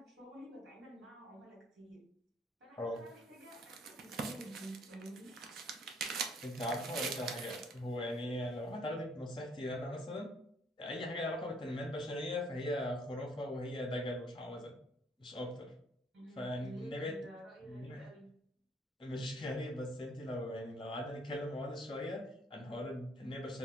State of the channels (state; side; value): normal; both; correlation 0.63